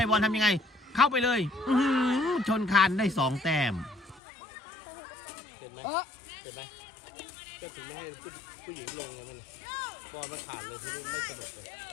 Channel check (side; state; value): right; drops out; at 4.2 s